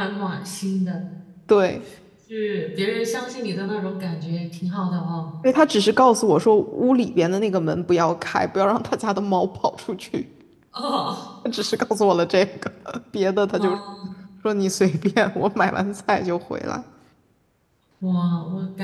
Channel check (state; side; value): identical; both; correlation 1.00